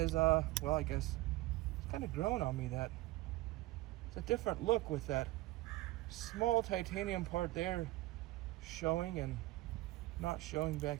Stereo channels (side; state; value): left; quieter; 18.5 dB